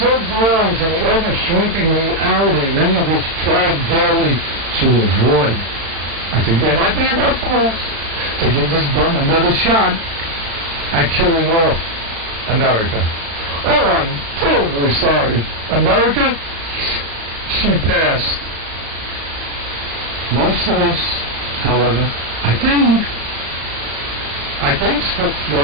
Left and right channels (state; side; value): late; left; 36 ms